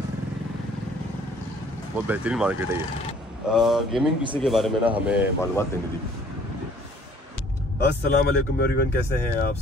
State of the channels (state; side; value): normal; both; correlation 0.56